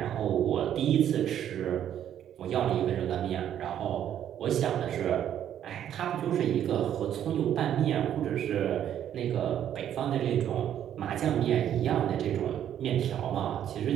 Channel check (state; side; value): quieter; left; 10.3 dB